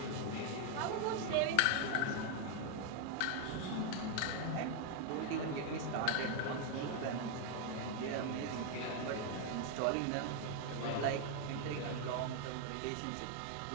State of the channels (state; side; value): different; both; correlation 0.00